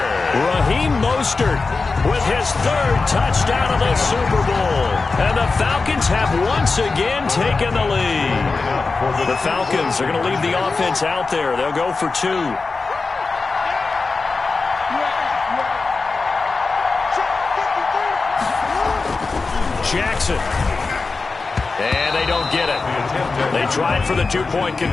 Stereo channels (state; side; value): quieter; right; 4.1 dB